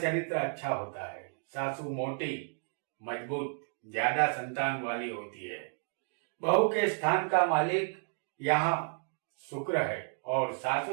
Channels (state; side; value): silent; left; 56 dB below the other